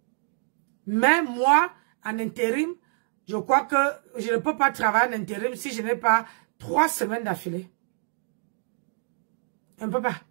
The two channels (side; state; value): left; silent; digital silence